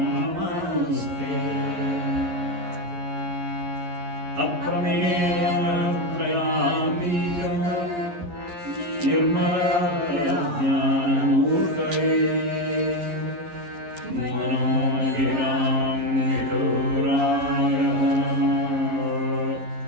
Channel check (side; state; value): left; late; 11 ms